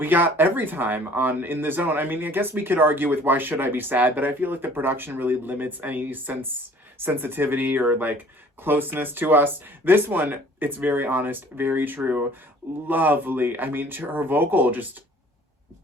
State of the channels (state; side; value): normal; both; correlation 0.52